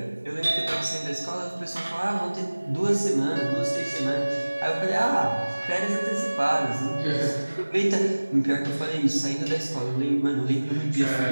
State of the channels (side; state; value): both; inverted; correlation -1.00